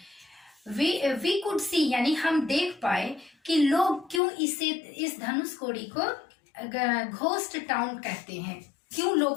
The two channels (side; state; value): right; drops out; at 4.2 s